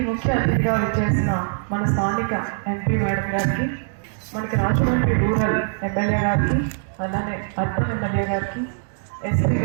ముఖ్య అతిథిగా వచ్చేసిన మన స్థానిక ఎంపీ మేడం గారికి, మనకి రాజమండ్రి రూరల్ ఎమ్మెల్యే గారికి, అలానే అర్బన్ ఎమ్మెల్యే గారికి, ఎస్పీ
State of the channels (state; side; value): silent; left; 62 dB below the other